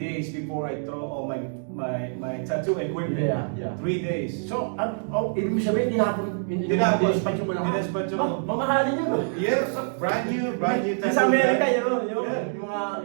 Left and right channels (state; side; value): silent; left; digital silence